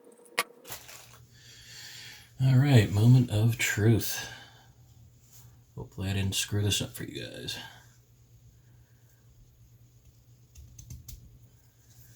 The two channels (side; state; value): both; identical; correlation 1.00